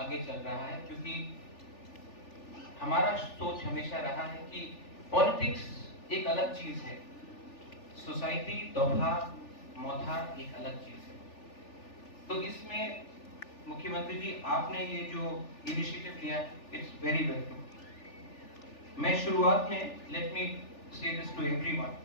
चल रहा है, क्योंकि हमारा सोच हमेशा रहा है कि पॉलिटिक्स एक अलग चीज है, सोसाइटी दोभा मौथा एक अलग चीज है। तो इसमें मुख्यमंत्री जी आपने ये जो इनिशिएटिव लिया, इट्स वेरी वेलकम। मैं शुरुआत में लेट मी से दिस टू एवरीवन,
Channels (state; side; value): late; right; 3.4 ms